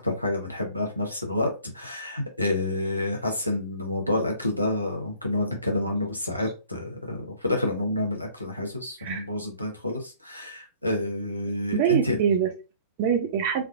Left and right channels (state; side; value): inverted; both; correlation -0.54